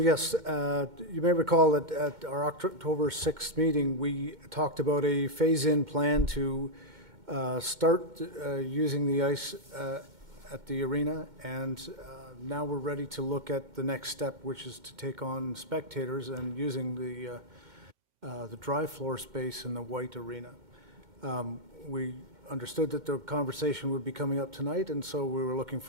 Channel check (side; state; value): left; late; 2.1 ms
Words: may recall that at our October 6th meeting, we talked about a phase-in plan to start using the ice at the arena, and now we're ready to look at the next step, which is to take on spectators and using the dry floor space in the white arena. We understood that the conversation would be coming up tonight, and so we were looking